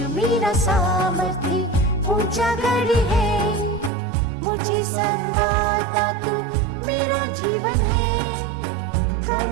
मेरा सामर्थ्य ऊंचा गढ़ है, मुझे संभालता तू मेरा जीवन है।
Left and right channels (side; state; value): left; drops out; at 3.9 s